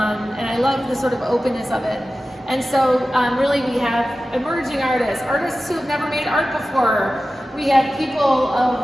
I love the sort of openness of it. And so really we have emerging artists who have never made art before. We have people of,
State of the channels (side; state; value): both; normal; correlation 0.95